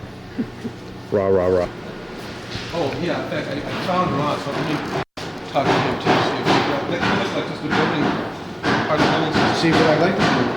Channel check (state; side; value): identical; both; correlation 1.00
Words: Rah, rah, rah. Oh, yeah, in fact, I found Ron, so let me talk to him too, see if that looks like just the building, part of the building system. See, what I'd like to do,